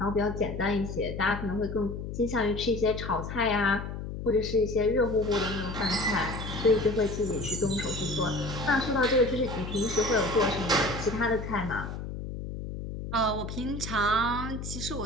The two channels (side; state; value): left; noise; hum, 7 dB below the sound